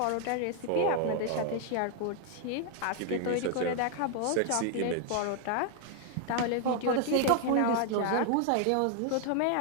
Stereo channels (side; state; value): both; different; correlation 0.00